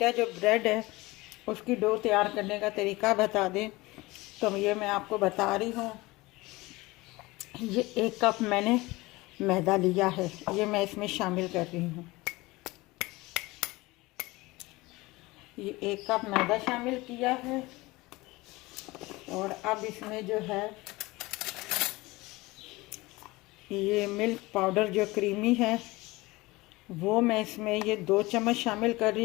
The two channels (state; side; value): quieter; right; 21.4 dB